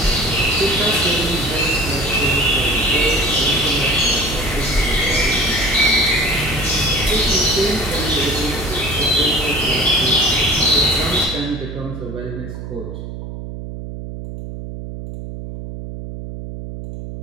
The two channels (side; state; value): right; noise; hum, 9 dB below the sound